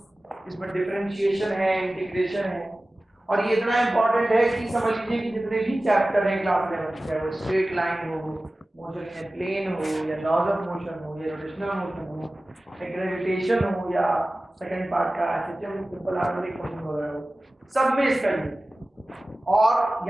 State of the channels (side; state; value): both; normal; correlation 0.97